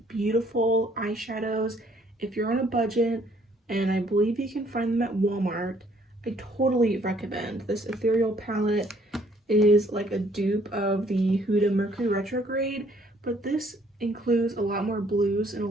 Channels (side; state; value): both; normal; correlation 0.63